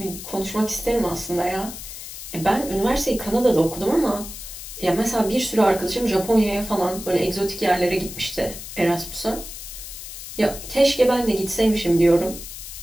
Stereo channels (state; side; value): noise; left; hiss, 11 dB below the sound